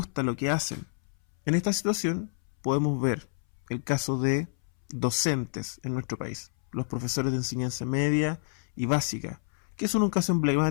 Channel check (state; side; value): silent; right; 59 dB below the other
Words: lo que hacen. En esta situación podemos ver el caso de docentes en nuestro país, los profesores de enseñanza media y básica, que son un caso